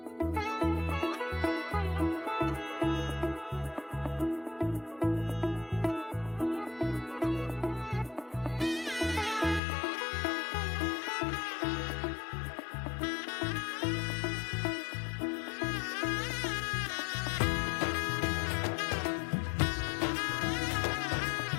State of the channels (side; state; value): right; drops out; at 9.6 s